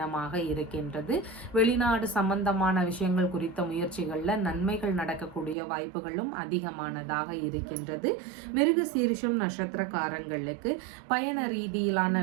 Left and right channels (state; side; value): drops out; left; at 5.6 s